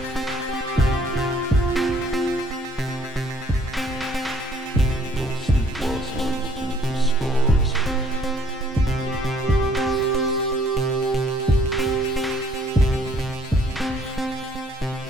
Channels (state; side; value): normal; both; correlation 0.61